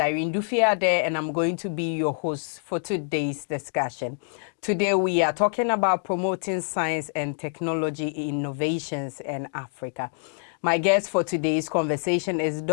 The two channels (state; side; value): silent; right; digital silence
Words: Dufie Addai, and I'm going to be your host for today's discussion. Today, we are talking about promoting science and technology innovations in Africa. My guest for today's conversation is